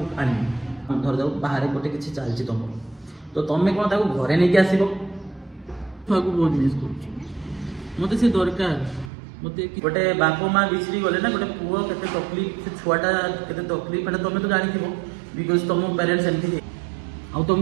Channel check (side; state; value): left; drops out; at 9.1 s